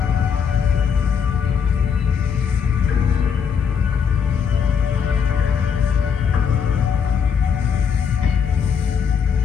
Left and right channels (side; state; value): right; quieter; 6.9 dB